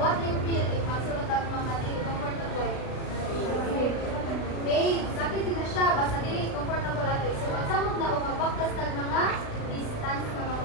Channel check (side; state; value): right; late; 36 ms